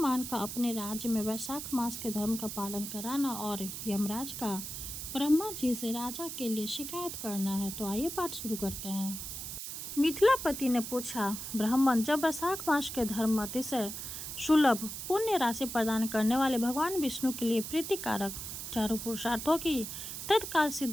का अपने राज्य में वैशाख मास के धर्म का पालन कराना और यमराज का ब्रह्मा जी से राजा के लिए शिकायत करना है। तो आइए पाठ शुरू करते हैं। मिथिलापति ने पूछा, ब्राह्मण, जब वैशाख मास के धर्म अतिशय सुलभ पुण्य राशि प्रदान करने वाले भगवान विष्णु के लिए प्रीतिकारक चारों पुरुषार्थों की तत्काल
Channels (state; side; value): noise; right; hiss, 7 dB below the sound